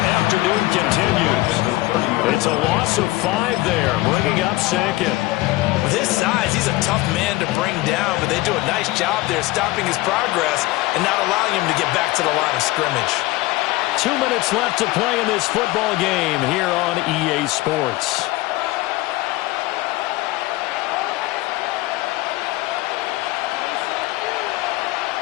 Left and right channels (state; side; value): quieter; right; 19.4 dB